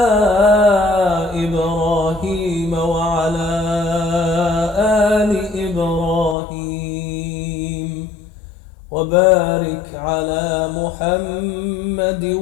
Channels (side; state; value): right; drops out; at 6.4 s